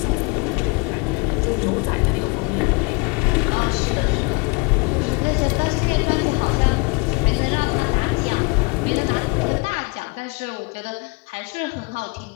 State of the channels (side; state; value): right; quieter; 29.8 dB